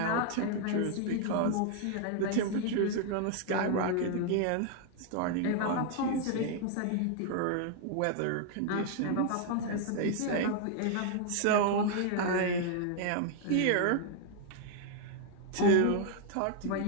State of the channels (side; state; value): both; different; correlation 0.00